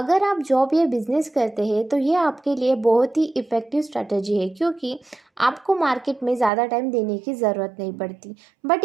आप जॉब या बिजनेस करते हैं तो ये आपके लिए बहुत ही इफ़ेक्टिव स्ट्रैटेजी है, क्योंकि आपको मार्केट में ज़्यादा टाइम देने की ज़रूरत नहीं पड़ती, बट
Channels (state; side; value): drops out; left; at 6.5 s